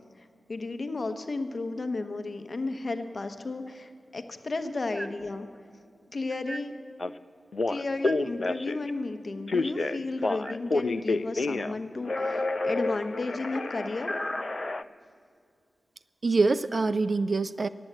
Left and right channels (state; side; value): normal; both; correlation 0.92